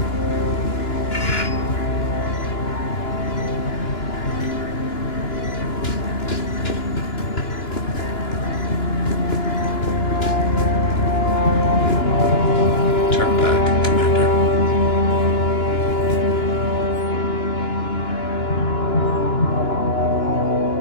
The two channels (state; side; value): late; right; 2.9 ms